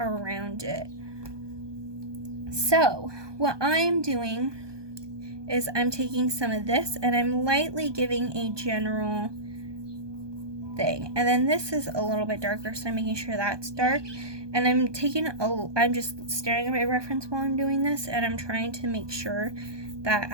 it. So, what I'm doing is I'm taking some of this and I'm lightly giving a general thing. And then this is a little bit darker, so I'm making sure that's dark. And I'm just staring at my reference while I'm doing this, and I'm trying to make sure that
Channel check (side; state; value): left; late; 1.2 ms